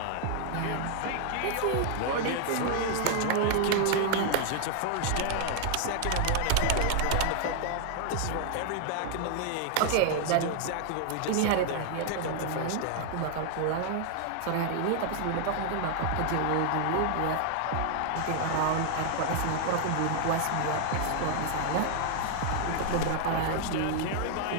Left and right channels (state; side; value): different; both; correlation 0.00